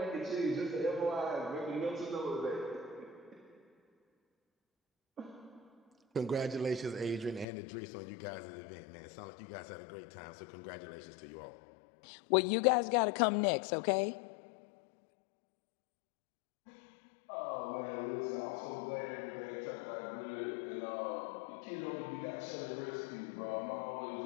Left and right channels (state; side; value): drops out; right; at 7.5 s